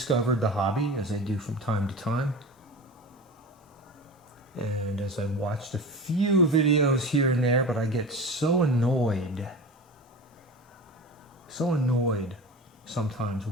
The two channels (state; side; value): normal; both; correlation 0.31